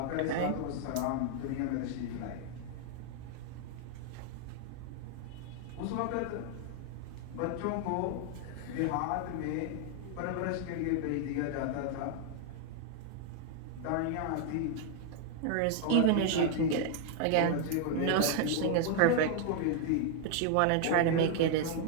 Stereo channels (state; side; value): different; both; correlation 0.00